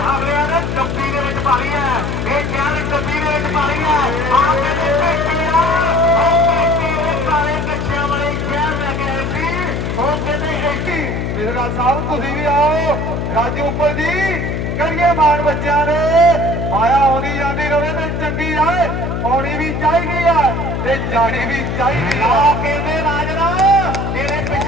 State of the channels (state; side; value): noise; left; hum, 2 dB below the sound